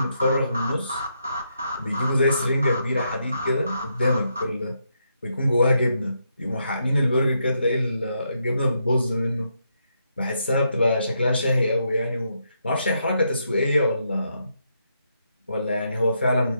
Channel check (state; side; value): inverted; both; correlation -0.80